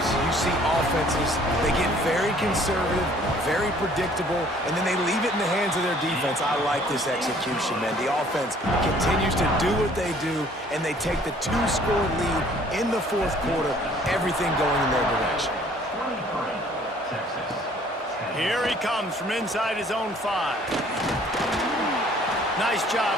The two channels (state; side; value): normal; both; correlation 0.57